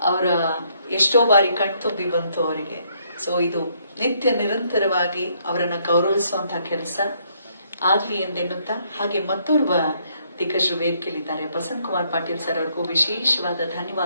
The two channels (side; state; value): both; inverted; correlation -0.70